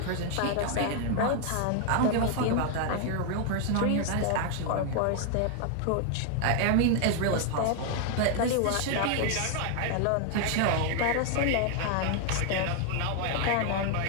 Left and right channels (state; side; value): different; both; correlation 0.00